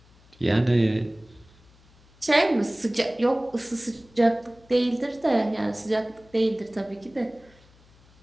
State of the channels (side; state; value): left; noise; hum, 28 dB below the sound